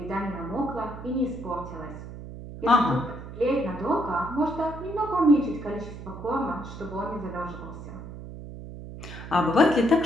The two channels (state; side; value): noise; right; hum, 11 dB below the sound